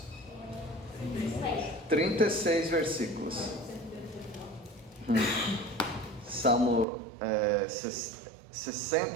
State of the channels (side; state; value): left; drops out; at 6.9 s